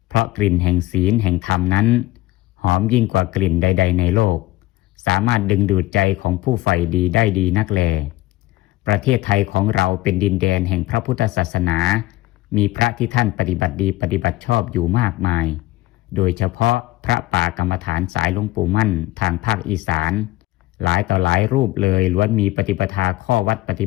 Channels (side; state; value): right; quieter; 17.8 dB